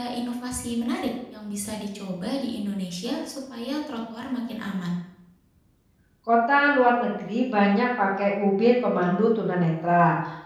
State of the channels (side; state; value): both; identical; correlation 1.00